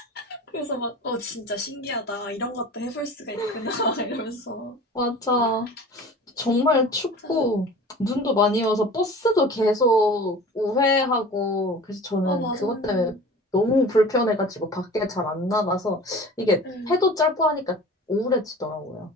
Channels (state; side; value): normal; both; correlation 0.40